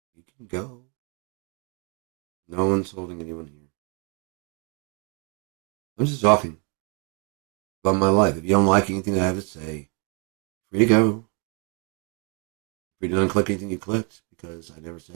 You can go. No one's holding anyone here. I'm just talking about my life. If you don't like anything I have to say, free to go. Free to unclick anything you clicked, because I never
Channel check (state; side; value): quieter; left; 34.8 dB